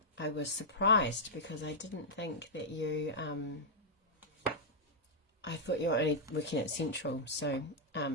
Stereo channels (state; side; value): normal; both; correlation -0.07